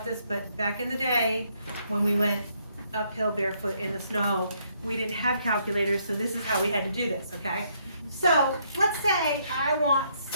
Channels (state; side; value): inverted; both; correlation -0.72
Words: this, but back in the day, when we went uphill barefoot in the snow, we didn't have calculators, so this is how we had to do this, okay? So let's say I want